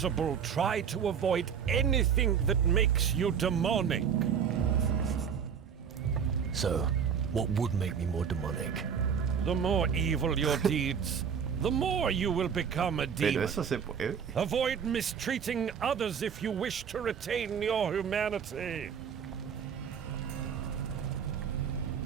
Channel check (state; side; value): quieter; left; 7.3 dB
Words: try to avoid anything that makes you demonic. So, what would make me more demonic? The more evil your deeds, the more you will become a Pero demon. eso se puede. Avoid mistreating others if you wish to retain your humanity.